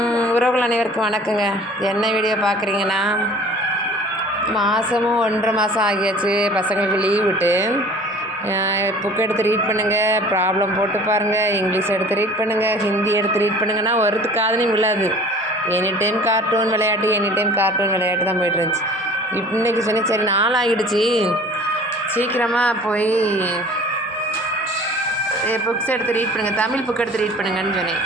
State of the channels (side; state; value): both; normal; correlation 0.46